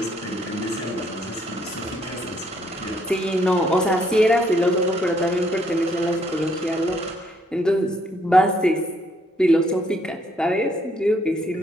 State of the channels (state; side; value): normal; both; correlation 0.69